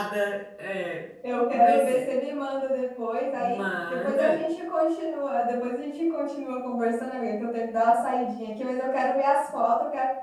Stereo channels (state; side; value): identical; both; correlation 1.00